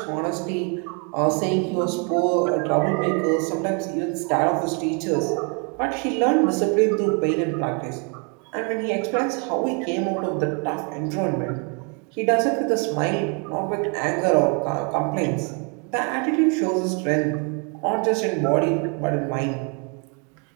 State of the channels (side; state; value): left; quieter; 35.0 dB